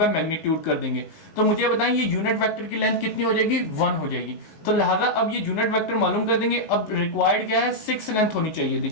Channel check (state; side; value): late; right; 19 ms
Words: magnitude कर देंगे। तो मुझे बताएं ये यूनिट वेक्टर की लेंथ कितनी हो जाएगी? 1 हो जाएगी। तो लिहाजा अब ये यूनिट वेक्टर मालूम कर देंगे। अब रिक्वायर्ड क्या है? 6 लेंथ होनी चाहिए